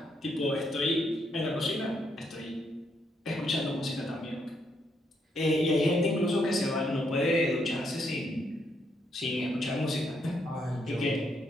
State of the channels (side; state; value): both; normal; correlation 0.76